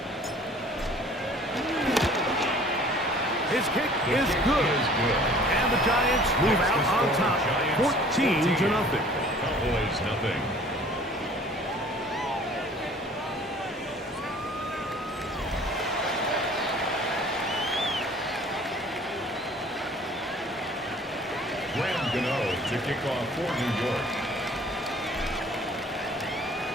His kick is good. And the Giants move out on top, 14-0. Cowboys nothing. Gano to kick off for New York.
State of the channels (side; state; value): both; normal; correlation 0.51